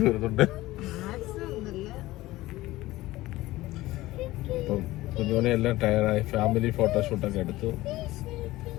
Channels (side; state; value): right; quieter; 17.7 dB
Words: വരുന്നുണ്ട്. അപ്പം കുഞ്ഞോനെ എല്ലാം ടയറായി. ഫാമിലി ഫോട്ടോഷൂട്ടൊക്കെ എടുത്തു.